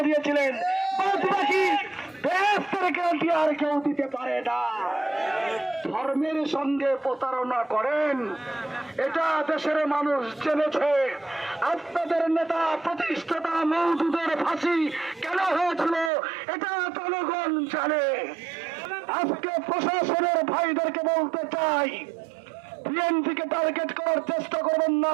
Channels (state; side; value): drops out; left; at 16.1 s